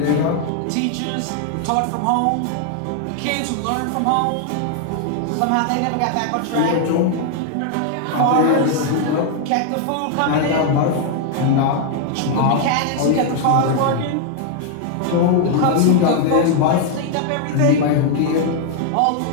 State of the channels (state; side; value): different; both; correlation 0.00